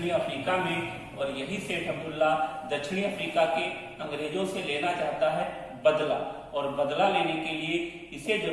अफ्रीका में। और यही सेठ अब्दुल्ला दक्षिणी अफ्रीका के अंग्रेजों से लेना चाहता है बदला, और बदला लेने के लिए इसे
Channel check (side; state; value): both; identical; correlation 1.00